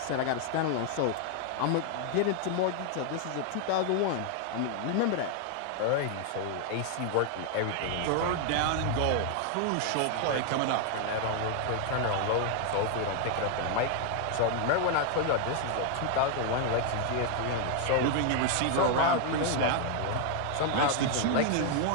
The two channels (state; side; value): different; both; correlation 0.00